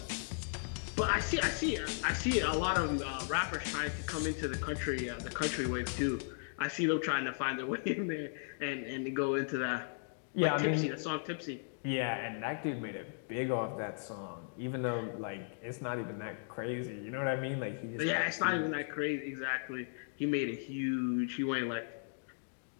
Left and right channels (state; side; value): silent; right; digital silence